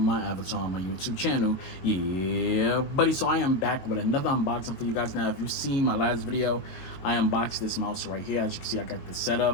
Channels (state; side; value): late; right; 22 ms